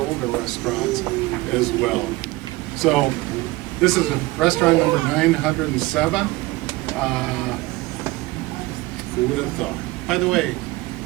restaurants as well. So this is restaurant number 907. Who would have thought? By the way,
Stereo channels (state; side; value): quieter; left; 20.8 dB